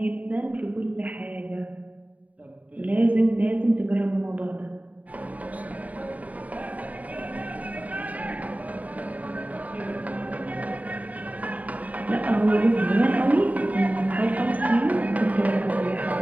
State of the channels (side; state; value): left; late; 0.071 ms